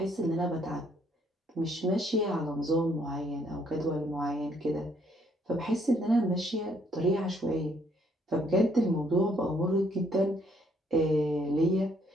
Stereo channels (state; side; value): normal; both; correlation 0.67